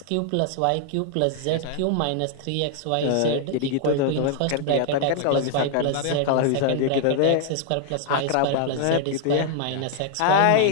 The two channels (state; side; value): different; both; correlation 0.00